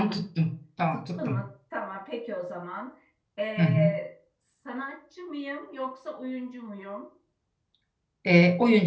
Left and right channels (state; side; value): identical; both; correlation 1.00